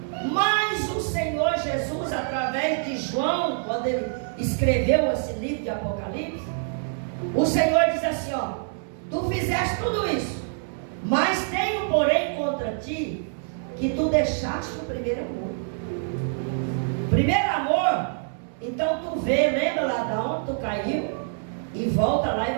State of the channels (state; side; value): silent; left; digital silence